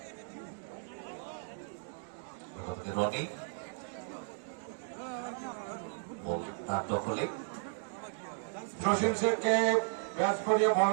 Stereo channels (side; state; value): left; silent; digital silence